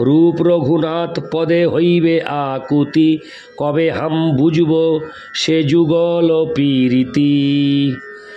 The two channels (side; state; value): both; identical; correlation 1.00